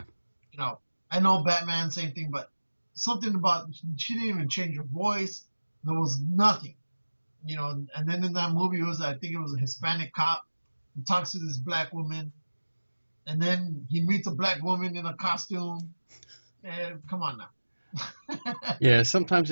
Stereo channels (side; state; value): both; inverted; correlation -1.00